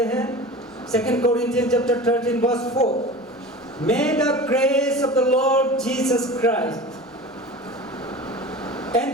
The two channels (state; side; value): normal; both; correlation 0.35